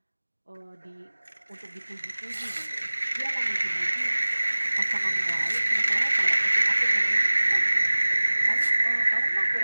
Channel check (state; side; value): inverted; both; correlation -1.00